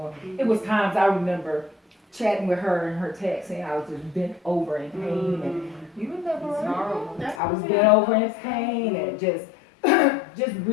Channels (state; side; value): drops out; right; at 7.4 s